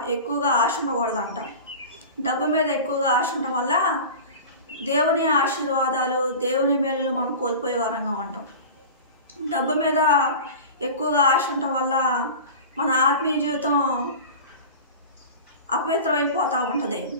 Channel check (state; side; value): inverted; both; correlation -0.34